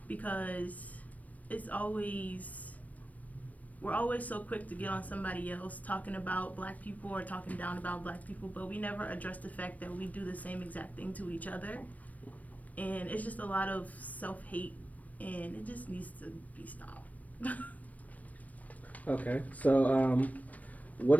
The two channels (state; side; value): late; right; 0.072 ms